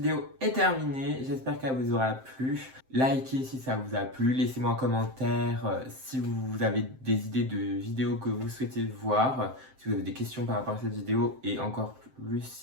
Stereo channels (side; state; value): left; late; 7.7 ms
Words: est terminée, j'espère qu'elle vous aura plu. Likez si ça vous a plu, laissez-moi un commentaire si vous avez des idées de vidéos que vous souhaitez voir, si vous avez des questions par rapport à cette vidéo et encore plus